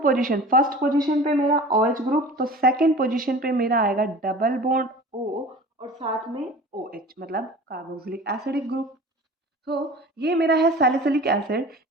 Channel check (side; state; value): both; normal; correlation 0.40